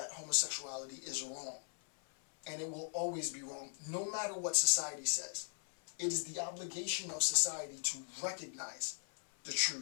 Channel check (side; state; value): right; silent; 52 dB below the other